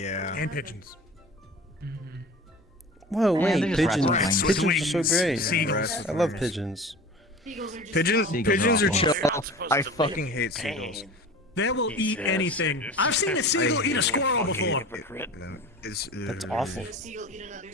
And pigeons. Whoa, they're wait, just pigeons. rats with Pigeons are so great. Seagulls. I love pigeons. Pigeons are chill. Supposed I to fucking believe hate pain. seagulls. They will eat anything. I've seen a seagull eat a squirrel before. Hypocrite. It's, That's awful.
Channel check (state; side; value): normal; both; correlation 0.37